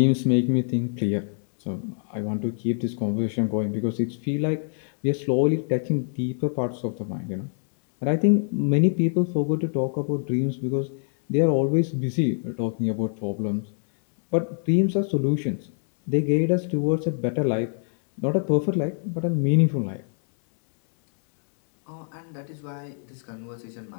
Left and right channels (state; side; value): silent; right; 62 dB below the other